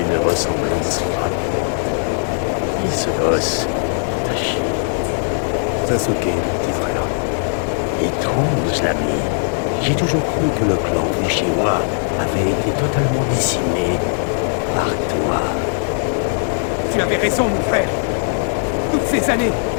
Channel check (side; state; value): right; silent; digital silence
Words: ressemblance frappante. Qui ce gosse? Tachi. Sasuke, mon petit frère. Étrange, l'ami. J'ai toujours cru que le clan Uchiwa avait été totalement décimé par toi. Tu avais raison, mon frère. Toutes ces années,